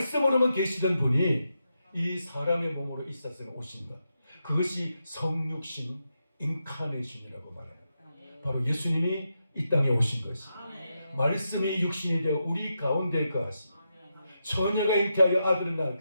계시던 분이 이 사람의 몸으로 이 세상에 오신 것, 그것이 성육신 인카네이션이라고 말합니다. 바로 예수님이 이 땅에 오신 것이, 말씀이 육신이 되어 우리 가운데 거하시니 처녀가 잉태하여 아들을 낳을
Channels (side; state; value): both; inverted; correlation -0.86